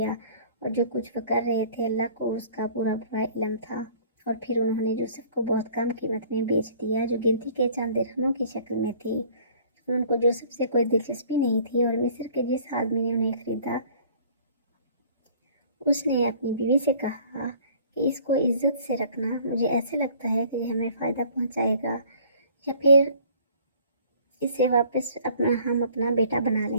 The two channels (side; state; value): both; inverted; correlation -0.52